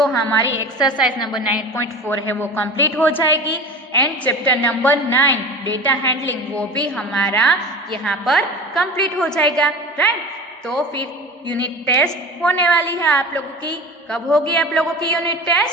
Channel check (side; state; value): both; normal; correlation 0.34